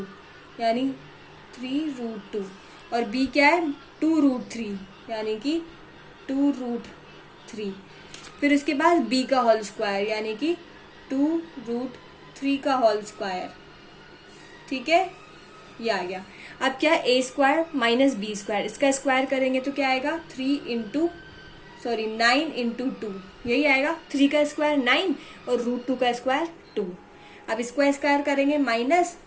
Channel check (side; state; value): both; identical; correlation 1.00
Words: यानी 3√2 और b क्या है 2√3 यानी कि 2√3। फिर उसके बाद b का होल स्क्वायर यानी कि 2√3 का होल स्क्वायर, ठीक है। ये आ गया। अब क्या है a square minus B square, इसका स्क्वायर करेंगे तो क्या आएगा 9 इंटू 2, यही आएगा। 3 का स्क्वायर 9 और √2 का स्क्वायर 2। अब इसको स्क्वायर करेंगे, माइनस